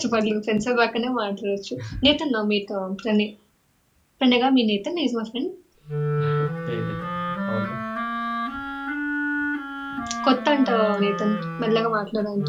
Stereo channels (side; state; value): both; identical; correlation 1.00